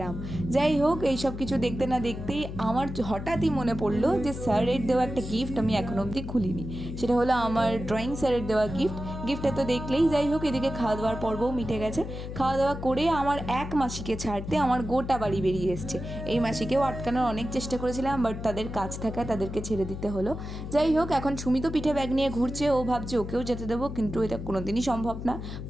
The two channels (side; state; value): left; noise; hum, 8 dB below the sound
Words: আম। যাই হোক, এই সব কিছু দেখতে না দেখতেই আমার হঠাৎই মনে পড়লো যে স্যারের দেওয়া একটা গিফট আমি এখনও অবধি খুলিনি। সেটা হলো আমার ড্রয়িং স্যারের দেওয়া গিফটটা তো দেখলেই। যাই হোক, এদিকে খাওয়া দাওয়ার পর্বও মিটে গেছে। খাওয়া দাওয়া করে আমার এক মাসিকে ছাড়তে আমার গোটা বাড়ি বেরিয়ে এসছে। এই মাসিকেও আটকানোর অনেক চেষ্টা করেছিলাম, বাট তাদের কাজ থাকায় তাদেরকে ছেড়ে দিতে হলো। যাই হোক, এখন সুমি তো পিঠে ব্যাগ নিয়ে ঘুরছে। ও ভাবছে ওকেও যেতে দেবো, কিন্তু এটা কোনোদিনই সম্ভব না।